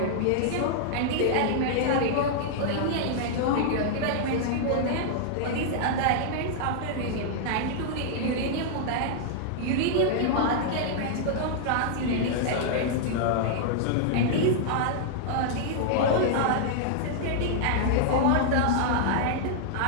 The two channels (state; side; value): different; both; correlation -0.01